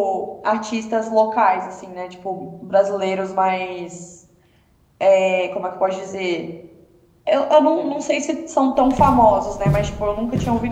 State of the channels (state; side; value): identical; both; correlation 1.00